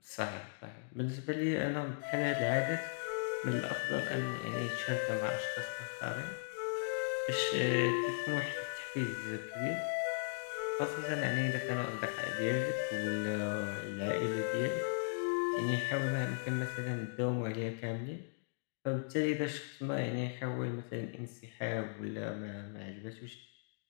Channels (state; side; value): silent; right; digital silence